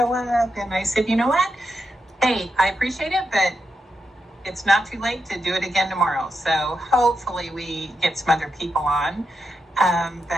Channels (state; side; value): normal; both; correlation 0.86